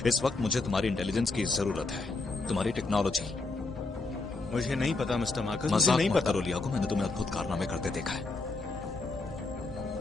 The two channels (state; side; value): quieter; right; 3.5 dB